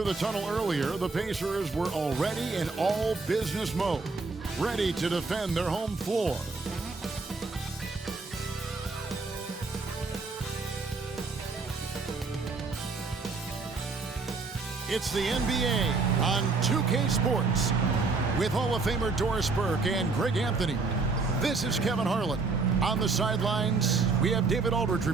the tunnel earlier, the Pacers were already in all business mode, ready to defend their home floor. It's the NBA on 2K Sports with Hall of Famer Doris Burke and Greg Anthony. This is Kevin Harlan. On the sidelines, we have David Aldridge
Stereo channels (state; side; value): quieter; left; 4.1 dB